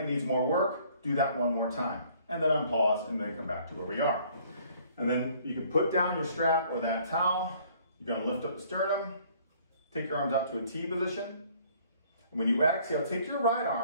it needs more work, do that one more time. And then unpause and then come back to where we are. And then you can put down your strap or that towel. You're going to lift up the sternum, take your arms out to a T position. And when you exhale, take your right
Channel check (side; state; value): both; inverted; correlation -0.58